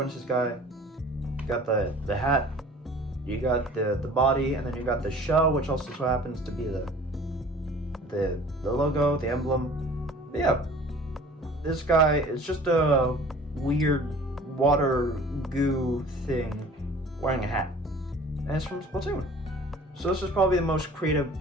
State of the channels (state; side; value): normal; both; correlation 0.47